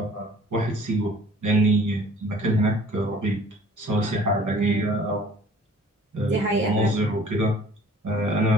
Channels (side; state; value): both; normal; correlation 0.51